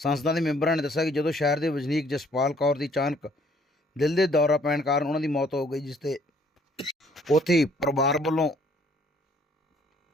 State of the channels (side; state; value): both; normal; correlation 0.62